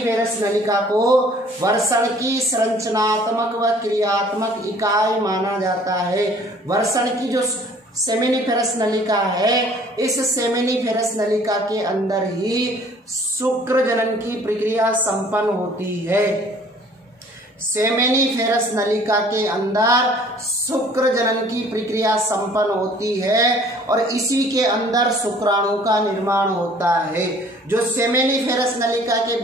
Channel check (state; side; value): normal; both; correlation 0.54